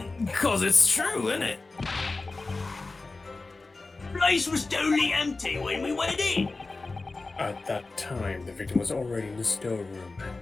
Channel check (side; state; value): right; quieter; 3.6 dB